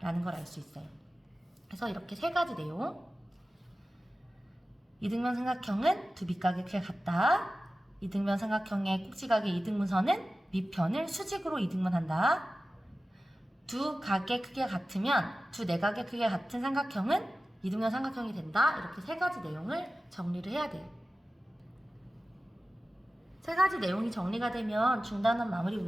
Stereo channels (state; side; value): normal; both; correlation 0.95